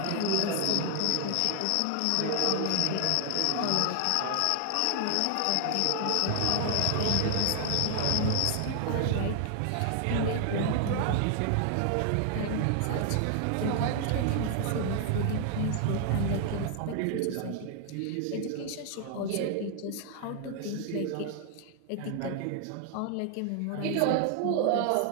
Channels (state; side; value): different; both; correlation 0.00